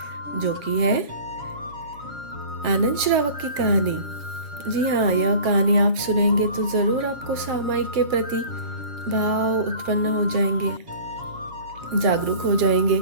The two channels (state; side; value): late; left; 7.7 ms